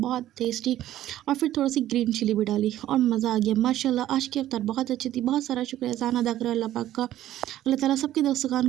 टेस्टी। और फिर थोड़ी सी ग्रीन चिली भी डाली और मज़ा आ गया माशाल्लाह। आज की अफ्तार बहुत अच्छी थी, बहुत सारा शुक्र एहसान अदा करो अल्लाह पाक का। अल्लाह ताला सबके दस्तरखान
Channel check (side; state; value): left; quieter; 13.2 dB